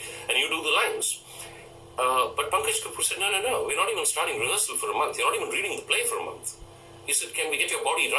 and you do the lines. But Pankaj Kapoor said, no, we're not even starting rehearsal for a month. You're not even reading the play for a month. He said, can we get your body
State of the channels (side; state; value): both; identical; correlation 1.00